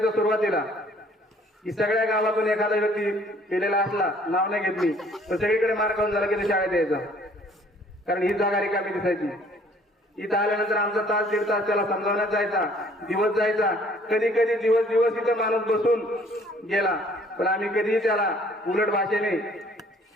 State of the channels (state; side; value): normal; both; correlation 0.58